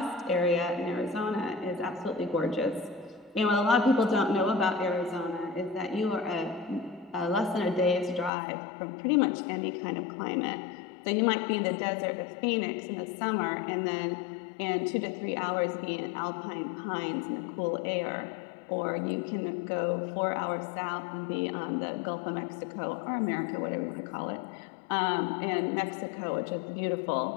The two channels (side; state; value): right; drops out; at 8.3 s